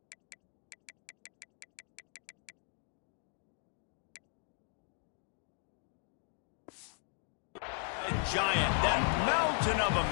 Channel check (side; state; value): right; silent; 53 dB below the other